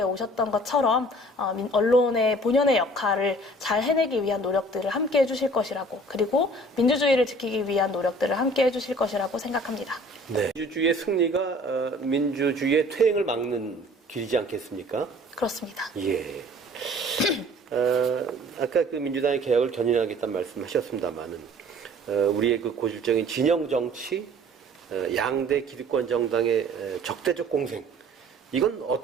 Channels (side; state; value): both; normal; correlation 0.51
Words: 오셨던 것처럼 언론의 본연의 역할을 잘 해내기 위한 노력들을 함께 해주실 것이라고 그리고 민주주의를 지키기 위한 노력들을 함께 해주실 것이라고 생각합니다. 네. 민주주의의 승리가 민주주의의 퇴행을 막는 길이지 않겠습니까? 그렇습니다. 예. 아까 민주당의 개혁을 견인하겠다는 말씀하셨습니다만은 우리의 고질적인 진영 정치, 양대 기득권 정당의 적대적 공생, 이건